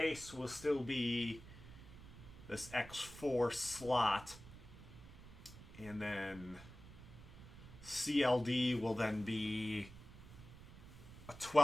will still be this X4 slot. And then CLD will then be a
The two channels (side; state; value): right; noise; rumble, 16 dB below the sound